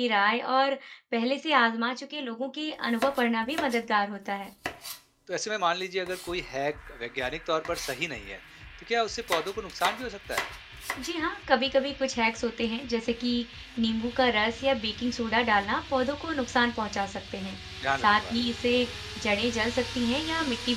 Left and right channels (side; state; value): both; identical; correlation 1.00